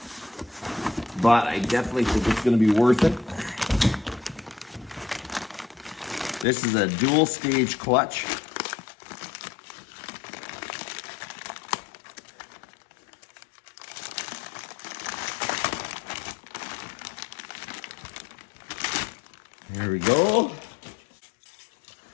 but I definitely think it's going to be worth it. This is a dual stage clutch. There we go.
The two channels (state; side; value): drops out; right; at 6.5 s